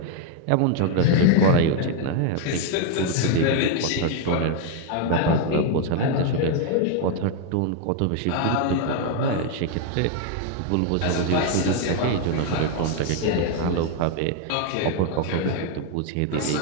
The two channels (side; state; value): both; different; correlation 0.01